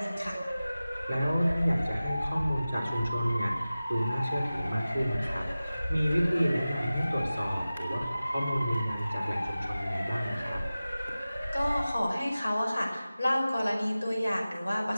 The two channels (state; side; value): inverted; both; correlation -0.96